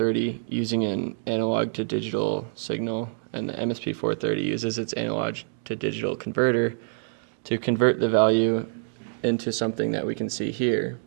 using an analog to digital signal, and the MSP430 uses its analog to digital converter to convert the value into something that we can see here.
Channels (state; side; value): silent; left; 61 dB below the other